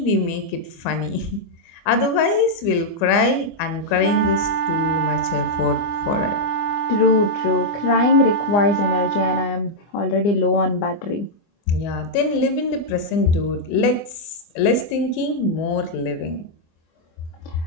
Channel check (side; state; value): right; late; 25 ms